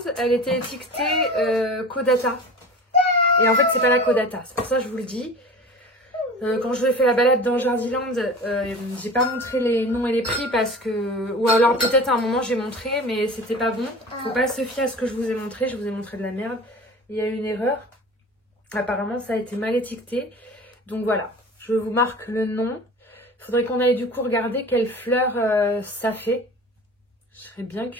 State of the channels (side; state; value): both; normal; correlation 0.37